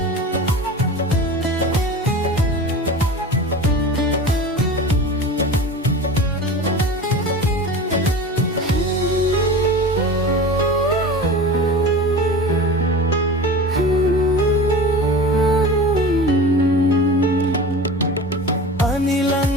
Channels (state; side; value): normal; both; correlation 0.33